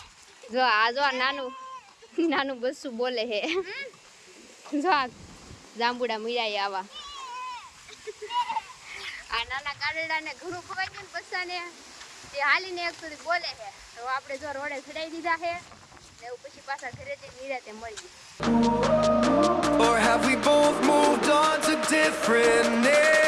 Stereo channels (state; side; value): identical; both; correlation 1.00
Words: જો આ જો નાનું બસ્સું બોલે હે જો આ જાંબુડા મીરાય આવા. આ નાના ગાડરડાને ઘણું ખવાઈ ગયું ને બસ્સાને તે હાલીને એક સુધી બોલે છે તો આપણે જો રોડે ચડાઈ દીધા છે ને એવું પછી પાછા ઘરે જઈને નિરાતે મળી. Or have we both moved on to different names?